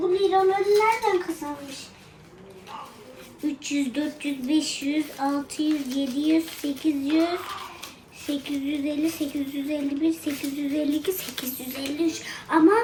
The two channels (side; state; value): both; identical; correlation 1.00